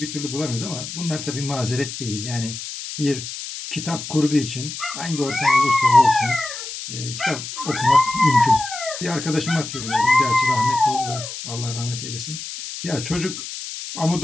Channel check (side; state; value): left; noise; hiss, 9 dB below the sound